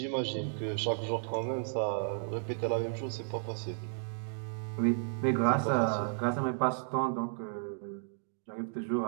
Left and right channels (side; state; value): left; silent; digital silence